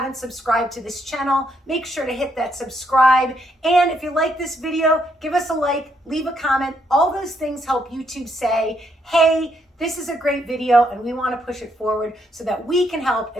subscribed to this channel, make sure to hit that subscribe. And if you like this video, give us a like, leave a comment. All those things help YouTube say, hey, this is a great video and we want to push it forward so that we can help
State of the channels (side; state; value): both; normal; correlation 0.74